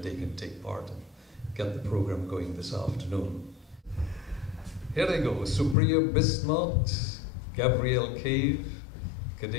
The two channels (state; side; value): drops out; right; at 5.8 s